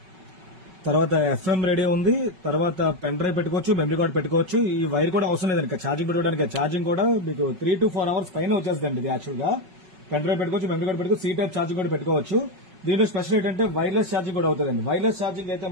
తర్వాత ఎఫ్ఎం రేడియో ఉంది, తర్వాత పెన్ డ్రైవ్ పెట్టుకోవచ్చు, మెమరీ కార్డ్ పెట్టుకోవచ్చు. ఈ వైర్ కూడా అవసరం లేదండి ఛార్జింగ్ పెట్టుకోవడానికి. ఛార్జింగ్ కూడా మీకు 3 to 4 hours పైన వచ్చేస్తుంది ఇది యాక్చువల్ గా. పెన్ డ్రైవ్ పెట్టుకోవచ్చు, మెమరీ కార్డ్ పెట్టుకోవచ్చు, సీ టైప్ ఛార్జింగ్ కూడా పెట్టుకోవచ్చు. దీంట్లో స్పెషల్ ఏంటంటే వైర్లెస్ ఛార్జింగ్ కూడా అవుతుందండి. వైర్లెస్ ఛార్జింగ్ అయితే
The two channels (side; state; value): left; late; 5.3 ms